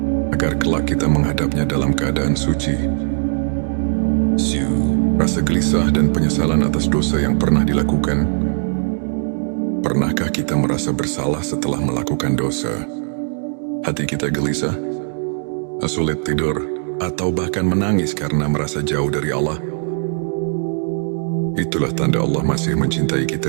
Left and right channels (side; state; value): left; silent; 57 dB below the other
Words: agar kelak kita menghadapnya dalam keadaan suci. Rasa gelisah dan penyesalan atas dosa yang pernah dilakukan. Pernahkah kita merasa bersalah setelah melakukan dosa? Hati kita gelisah, sulit tidur, atau bahkan menangis karena merasa jauh dari Allah. Itulah tanda Allah masih mencintai